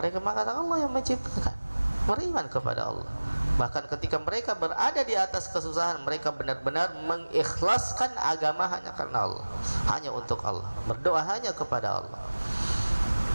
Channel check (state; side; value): inverted; both; correlation -1.00